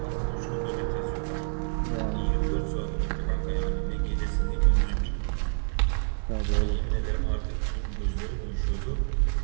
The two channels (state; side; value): silent; left; 57 dB below the other